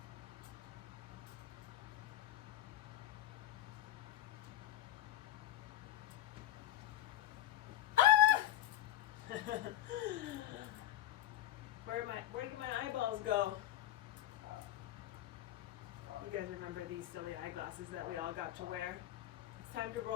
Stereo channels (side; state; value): right; quieter; 13.0 dB